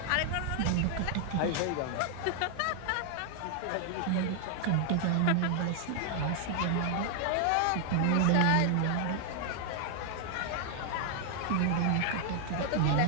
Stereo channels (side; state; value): both; different; correlation 0.00